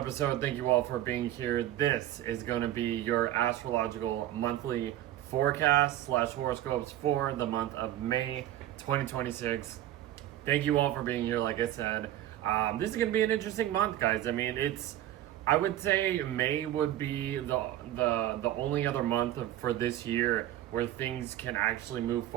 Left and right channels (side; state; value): left; quieter; 13.3 dB